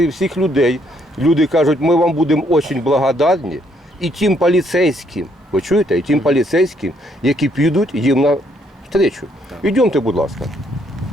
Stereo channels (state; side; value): normal; both; correlation 0.70